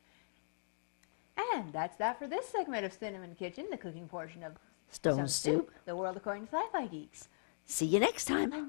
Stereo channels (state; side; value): silent; right; digital silence